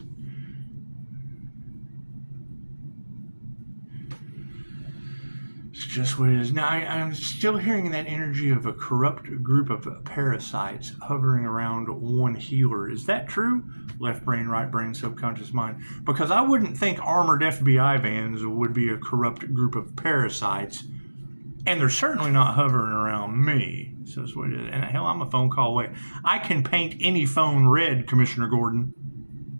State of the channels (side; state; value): both; inverted; correlation -1.00